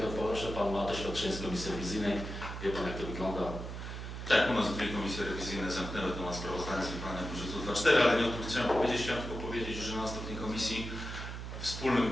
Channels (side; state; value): right; noise; hum, 7 dB below the sound